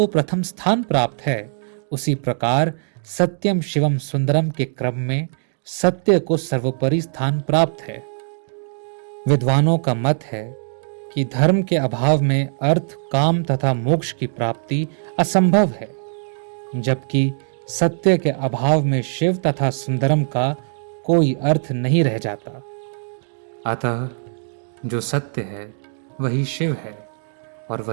प्रथम स्थान प्राप्त है, उसी प्रकार सत्यम शिवम सुंदरम के क्रम में सत्य को सर्वोपरि स्थान प्राप्त है। विद्वानों का मत है कि धर्म के अभाव में अर्थ, काम तथा मोक्ष की प्राप्ति असंभव है, जबकि सत्य के अभाव में शिव तथा सुंदरम का कोई अर्थ नहीं रह जाता। अतः जो सत्य है वही शिव है और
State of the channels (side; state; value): left; silent; 65 dB below the other